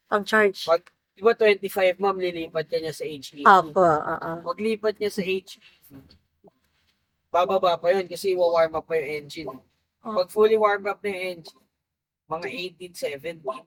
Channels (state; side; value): identical; both; correlation 1.00